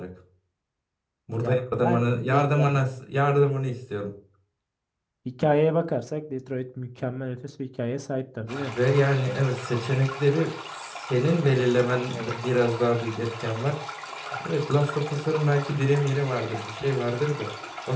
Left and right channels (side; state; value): both; identical; correlation 1.00